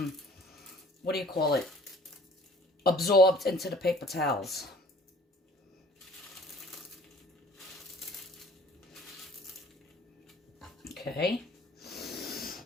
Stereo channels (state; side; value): normal; both; correlation 0.52